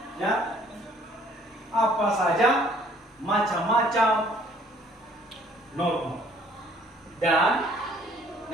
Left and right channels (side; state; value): both; normal; correlation 0.59